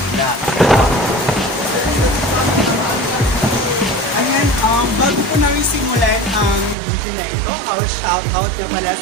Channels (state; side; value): drops out; left; at 6.8 s